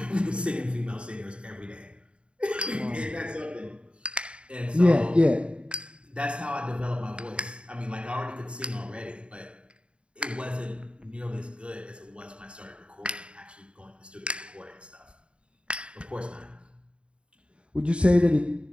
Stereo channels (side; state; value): left; late; 0.056 ms